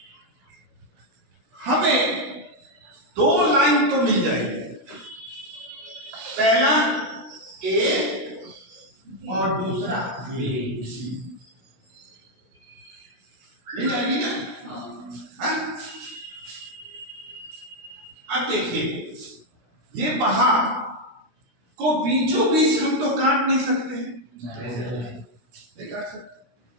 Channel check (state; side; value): late; left; 16 ms